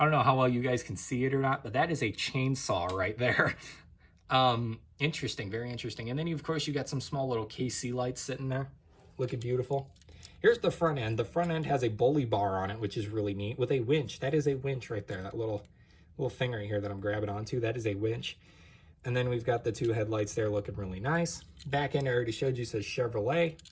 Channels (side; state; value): both; identical; correlation 1.00